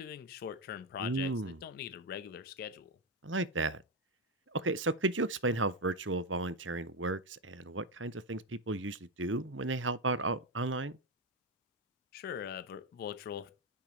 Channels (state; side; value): normal; both; correlation 0.09